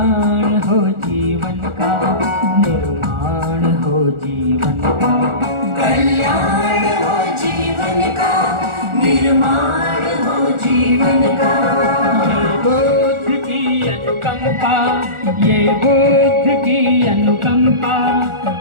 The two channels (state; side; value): late; left; 1.4 ms